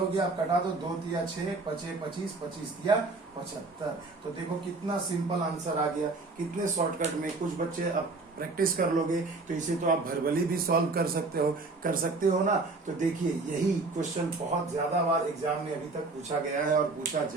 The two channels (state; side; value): quieter; left; 3.6 dB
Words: गया, अब कटा दो, 2 तिया 6, 5 25, 25 तिया 75। तो देखो कितना सिंपल आंसर आ गया, कितने शॉर्टकट में। कुछ बच्चे अब प्रैक्टिस कर लोगे तो इसे तो आप वर्बली भी सॉल्व कर सकते हो ना। तो देखिए यही क्वेश्चन बहुत ज्यादा बार एग्जाम में अभी तक पूछा गया है और पूछा